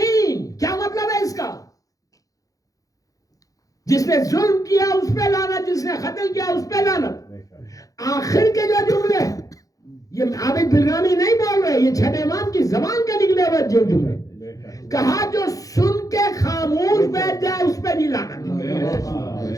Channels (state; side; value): late; right; 0.17 ms